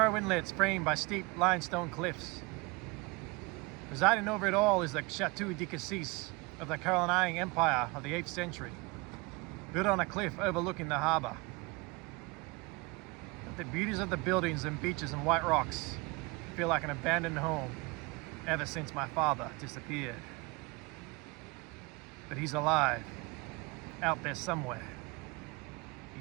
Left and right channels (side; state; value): left; quieter; 25.8 dB